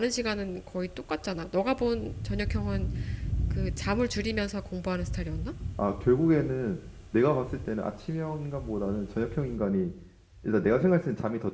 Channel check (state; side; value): identical; both; correlation 1.00